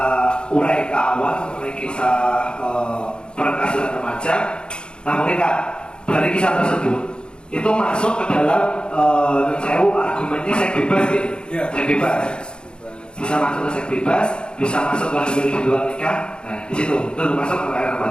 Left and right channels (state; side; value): late; right; 0.051 ms